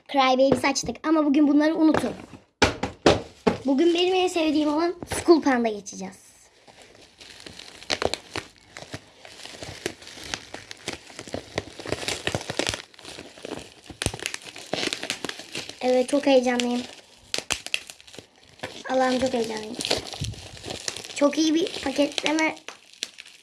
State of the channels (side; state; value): both; identical; correlation 1.00